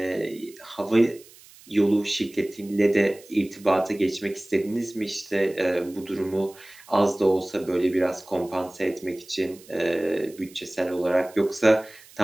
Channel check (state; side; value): noise; right; hiss, 23 dB below the sound